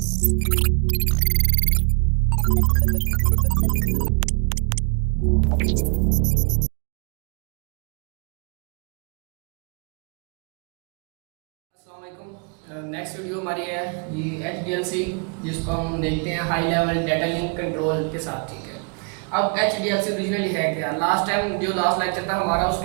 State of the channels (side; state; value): left; quieter; 35.3 dB